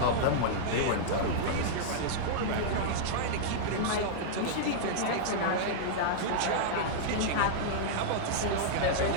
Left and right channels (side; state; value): both; different; correlation -0.02